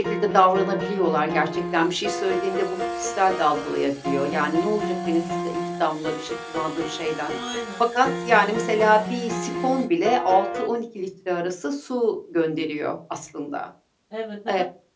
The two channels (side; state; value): both; identical; correlation 1.00